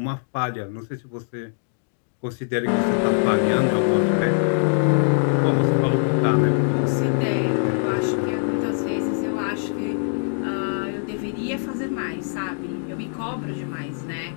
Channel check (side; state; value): right; silent; digital silence